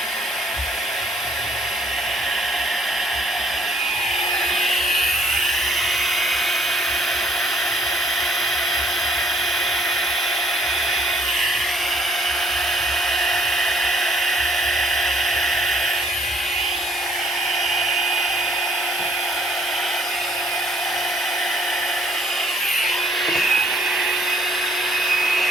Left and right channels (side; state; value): both; normal; correlation 0.63